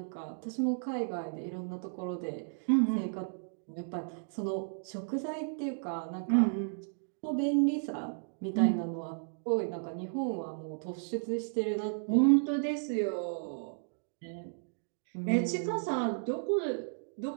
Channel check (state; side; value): silent; left; digital silence